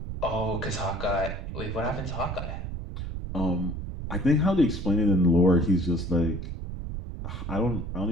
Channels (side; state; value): right; noise; rumble, 6 dB below the sound